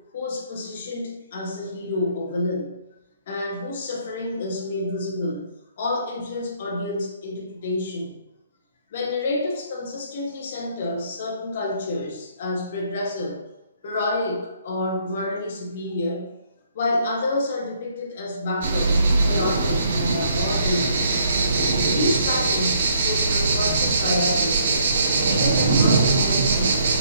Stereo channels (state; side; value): inverted; both; correlation -0.66